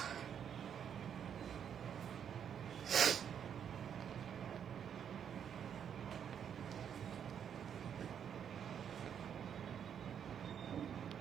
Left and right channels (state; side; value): quieter; left; 8.3 dB